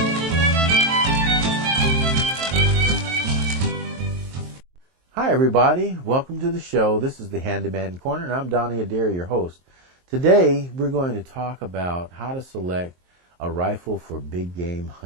Hi, everybody. Welcome to the show. This is the Handyman Corner, and I'm Donnie Adair, your host. Today, we're going to talk about how to select a rifle for big game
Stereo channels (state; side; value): late; left; 23 ms